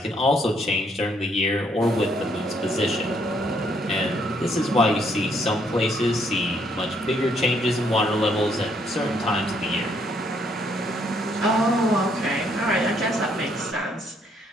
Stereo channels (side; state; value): both; normal; correlation 0.69